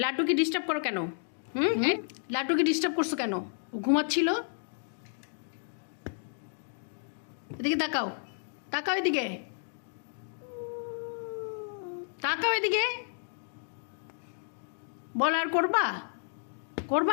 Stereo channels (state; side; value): silent; right; digital silence